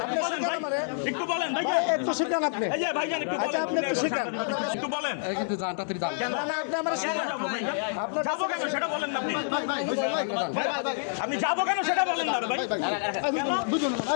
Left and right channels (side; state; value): right; silent; digital silence